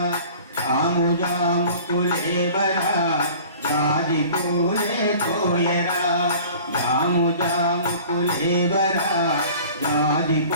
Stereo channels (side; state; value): both; inverted; correlation -0.45